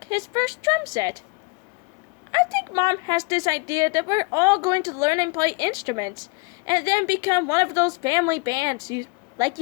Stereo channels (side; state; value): right; quieter; 29.5 dB